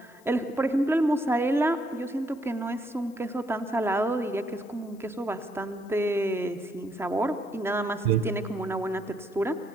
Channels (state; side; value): noise; left; hiss, 29 dB below the sound